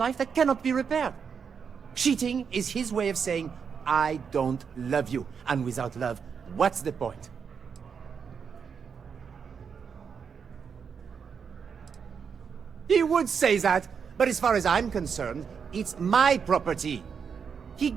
that cannot be repaired. Cheating is his way of saying, I don't love you. And without love, what's the point? He would say that, but as far as I'm concerned, it's my property. He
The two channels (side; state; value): left; quieter; 6.5 dB